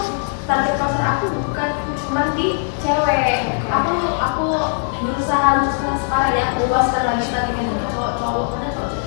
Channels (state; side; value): silent; right; digital silence